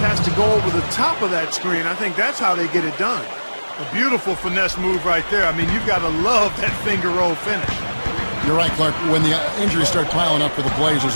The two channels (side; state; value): both; inverted; correlation -1.00